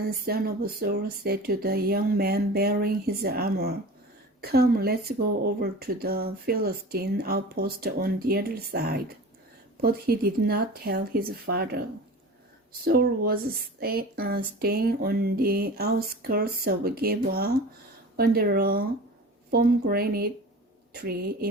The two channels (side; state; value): both; normal; correlation 0.36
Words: son of Saul, said to the young man bearing his armor, "Come, let's go over to the Philistine outpost on the other side." But he did not tell his father. Saul was staying on the outskirts of Gibeah under a pomegranate tree